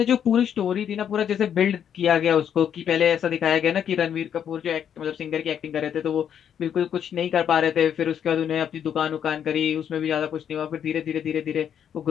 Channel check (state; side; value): quieter; right; 8.8 dB